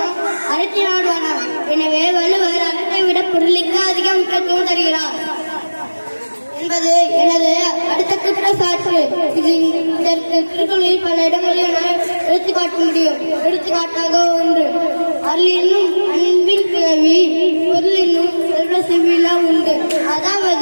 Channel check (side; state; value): both; inverted; correlation -1.00